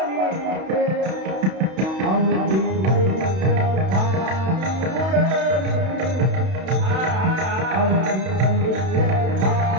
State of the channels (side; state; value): left; late; 32 ms